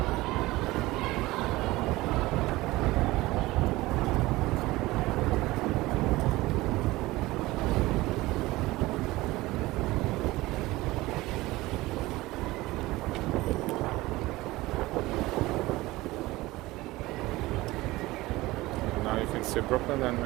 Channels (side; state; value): left; quieter; 19.3 dB